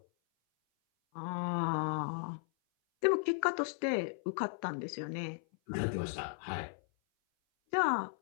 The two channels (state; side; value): silent; right; 54 dB below the other